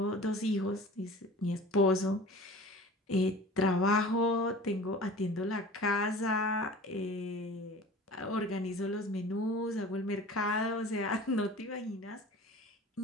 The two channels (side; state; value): both; normal; correlation 0.41